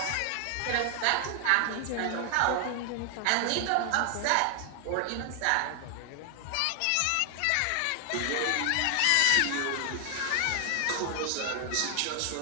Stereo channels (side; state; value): both; different; correlation 0.00